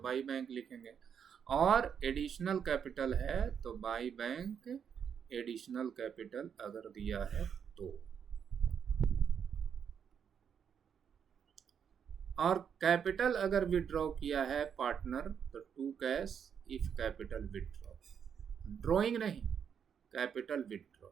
बैंक लिखेंगे। और एडिशनल कैपिटल है तो बाई बैंक एडिशनल कैपिटल अगर दिया है तो। और कैपिटल अगर विड्रॉ किया है पार्टनर तो to cash if capital withdraw, drawing नहीं, कैपिटल विड्रॉ।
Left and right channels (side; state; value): left; quieter; 7.6 dB